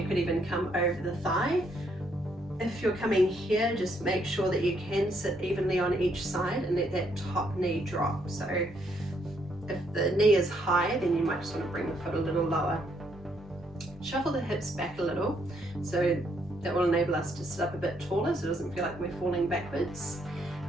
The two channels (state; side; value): normal; both; correlation 0.72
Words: could even come over the thigh. If you're coming here, just make sure that you can sit evenly on each side and let that top knee drop. So if the knee is high, then you might just want to bring the foot a little lower. Shuffle the hips back a little so That will enable us to sit up a bit taller so it doesn't feel like we're falling backwards.